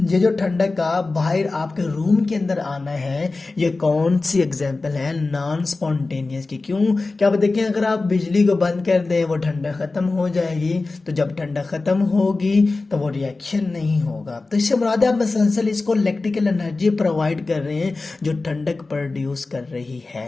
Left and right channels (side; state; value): right; quieter; 3.5 dB